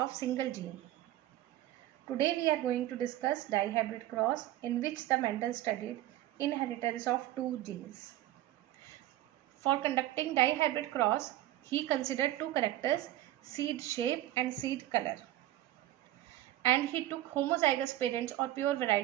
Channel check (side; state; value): left; quieter; 14.5 dB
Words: single gene. Today we are going to discuss dihybrid cross in which the Mendel studied inheritance of two genes. For conducting dihybrid cross, he considered two characters, seed shape and seed color. And he took homozygous parents or pure